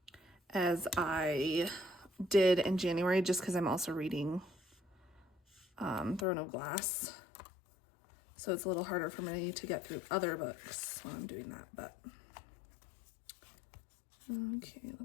as I did in January, just because I'm also reading Throne of Glass. So it's a little harder for me to get through other books while I'm doing that, but okay,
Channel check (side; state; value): right; drops out; at 6.2 s